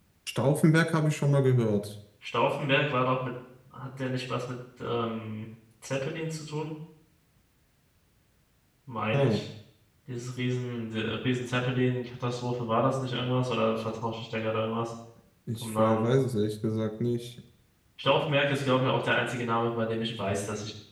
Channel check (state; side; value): identical; both; correlation 1.00